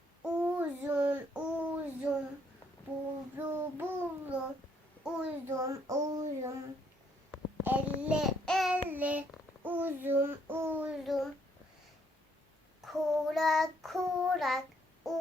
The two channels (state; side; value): normal; both; correlation 0.69